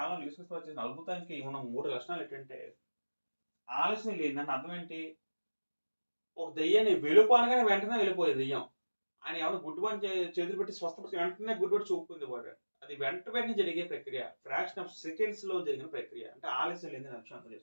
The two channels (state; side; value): inverted; both; correlation -1.00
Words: యేసుక్రీస్తు వారు చేసిన అద్భుతానికి ఉన్న 3 లక్షణాలు ఏంటంటే ఆలస్యం లేదంటే అర్థం ఏంటి? ఒక దెయ్యాన్ని వెలుపు అనగానే వెంటనే వెళ్ళిపోయేది దెయ్యం. ఆయన ఏమన్నా గుడ్డివాడిని చేతులు పెట్టి స్వస్థపరిచి వెంటనే గుడ్డివాడు చూపుకుంది వాడు. అది వెంటనే జరిగే ప్రక్రియ. ఫ్రాక్షన్ ఆఫ్ సెకండ్స్ లో జరిగిన ప్రక్రియ. అంటే ఆలస్యం లేదని విషయం అర్థం